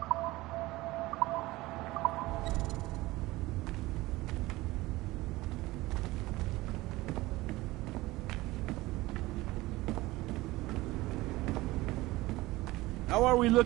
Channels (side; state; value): left; quieter; 19.3 dB